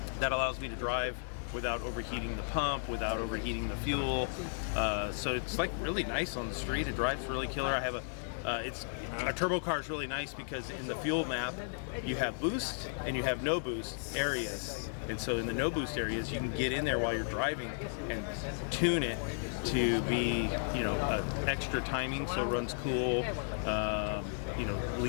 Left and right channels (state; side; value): silent; right; digital silence